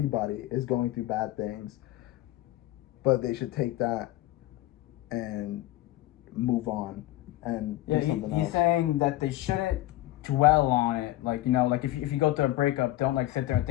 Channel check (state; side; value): quieter; right; 16.2 dB